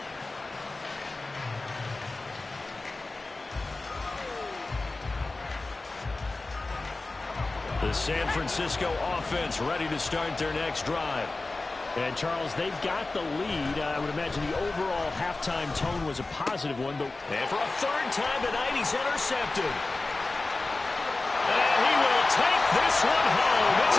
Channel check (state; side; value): quieter; right; 3.3 dB